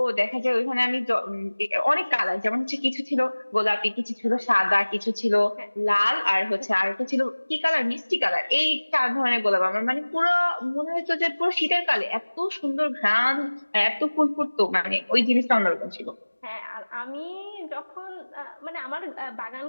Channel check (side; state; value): both; inverted; correlation -1.00